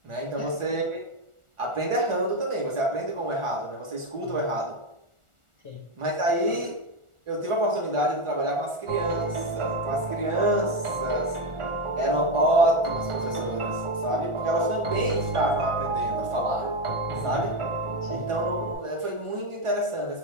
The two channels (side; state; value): left; late; 1.4 ms